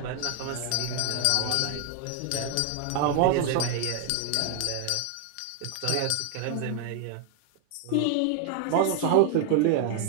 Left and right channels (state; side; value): different; both; correlation 0.00